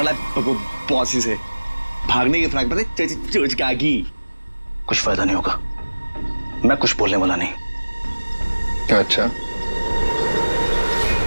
ला पॉसी से, भागने की फ्रैक पता चोचकागी। कुछ फायदा नहीं होगा, मैं कुछ बोलने वाला नहीं। अच्छा,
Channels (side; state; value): both; inverted; correlation -1.00